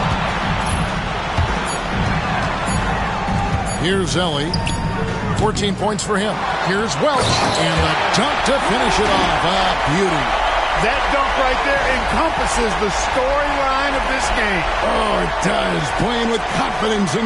Here's Ellie. 14 points for him. Here's Welch. And the dunk to finish it off. A beauty. That dunk right there encompasses the storyline of this game. Oh, it does. Playing with confidence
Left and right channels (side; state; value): both; identical; correlation 1.00